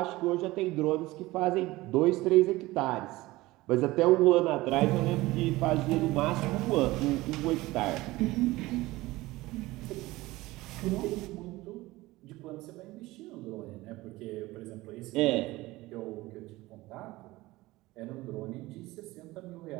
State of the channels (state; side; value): quieter; left; 19.2 dB